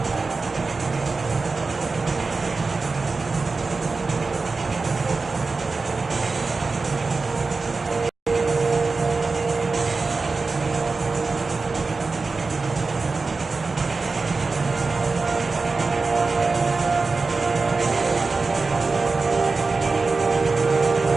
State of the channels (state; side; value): quieter; left; 4.0 dB